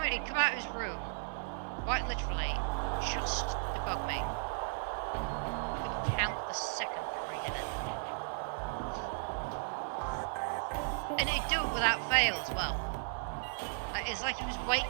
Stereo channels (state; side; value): silent; left; 54 dB below the other